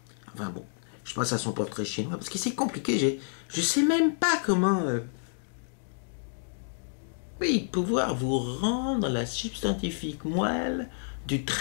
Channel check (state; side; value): silent; right; digital silence